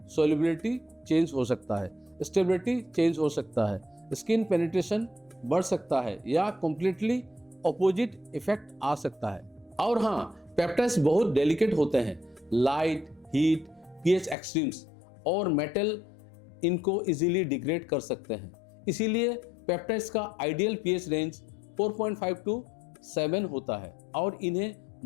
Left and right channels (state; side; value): drops out; right; at 14.4 s